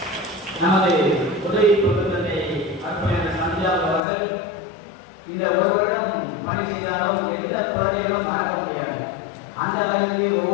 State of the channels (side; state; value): right; drops out; at 4.0 s